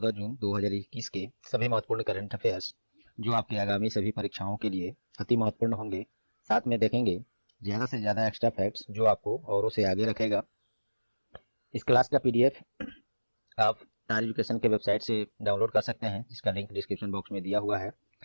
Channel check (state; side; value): inverted; both; correlation -1.00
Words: जून 2021 के सभी महत्वपूर्ण करंट अफेयर्स जो आपके आगामी सभी परीक्षाओं के लिए अति महत्वपूर्ण होंगे। साथ में देखेंगे ज़्यादा से ज़्यादा एक्स्ट्रा फैक्ट्स जो आपको औरों से आगे रखेगा। इस क्लास का पीडीएफ आप टार एजुकेशन के वेबसाइट से डाउनलोड कर सकते हैं, जिसका लिंक डिस्क्रिप्शन बॉक्स में दिया हुआ है।